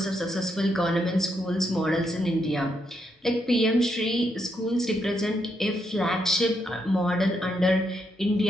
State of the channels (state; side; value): normal; both; correlation 0.79